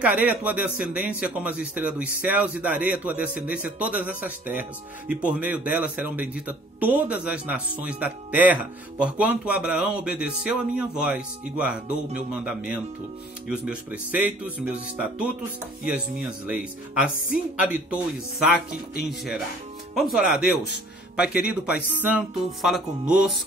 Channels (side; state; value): both; normal; correlation 0.53